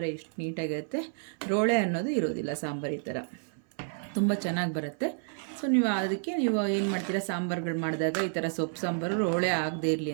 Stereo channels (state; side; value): silent; left; 58 dB below the other